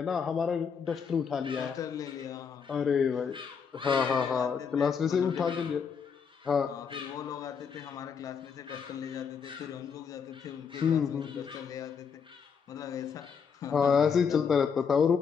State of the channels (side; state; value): right; quieter; 6.4 dB